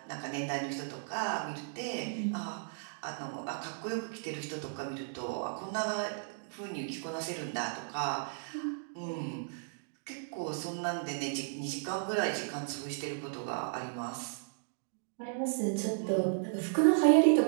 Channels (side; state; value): left; silent; digital silence